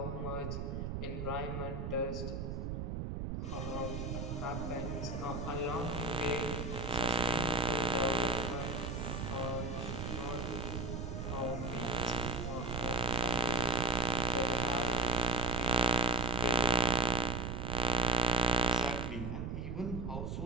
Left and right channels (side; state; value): right; noise; rumble, 4 dB below the sound